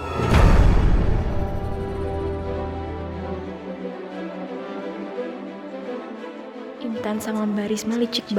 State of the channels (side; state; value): both; identical; correlation 1.00